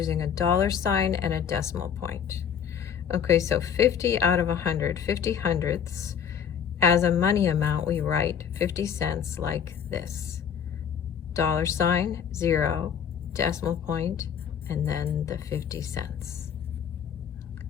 a dollar sign and a decimal point. Okay, so 50 out of 100, 50 hundredths. As a money amount, we write 50 cents like this. Dollar sign, 0, decimal point, and then the 50 cents.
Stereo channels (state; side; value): quieter; right; 8.1 dB